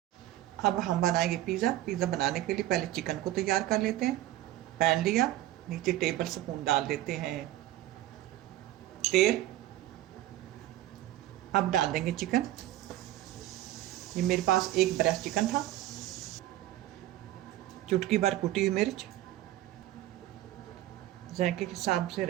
अब हम बनाएंगे पिज़्ज़ा बनाने के लिए पहले चिकन को तैयार कर लेते हैं। पैन लिया, नीचे टेबल स्पून डाल देते हैं तेल। अब डाल देंगे चिकन। ये मेरे पास 1 ब्रेस्ट चिकन था, चुटकी भर कुटी हुई मिर्च, जायके के हिसाब से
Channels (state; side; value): quieter; left; 14.7 dB